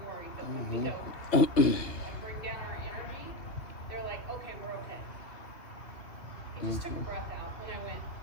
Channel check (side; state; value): right; late; 2.6 ms